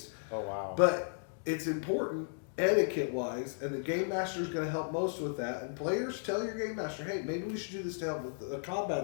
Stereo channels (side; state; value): right; silent; digital silence